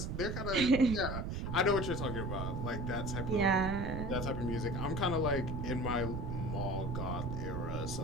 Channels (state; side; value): noise; right; rumble, 3 dB below the sound